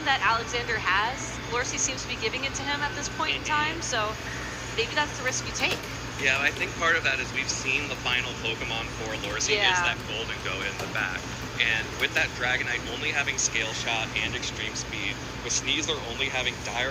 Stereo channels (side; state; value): both; identical; correlation 1.00